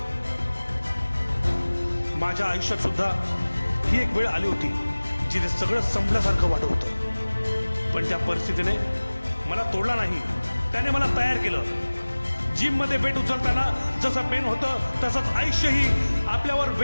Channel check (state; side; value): inverted; both; correlation -1.00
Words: माझ्या आयुष्यात सुद्धा ही एक वेळ आली होती जिथे सगळं संपल्यासारखं वाटत होतं. पण त्या परिस्थितीने मला तोडला नाही, त्याने मला तयार केलं. जिममध्ये वेट उचलताना जसं पेन होतं तसंच आयुष्यही आपल्यावर